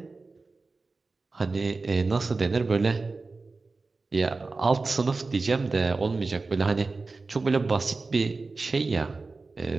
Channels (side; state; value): left; quieter; 3.8 dB